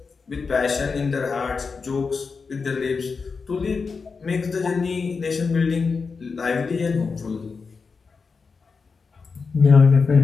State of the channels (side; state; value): right; quieter; 4.9 dB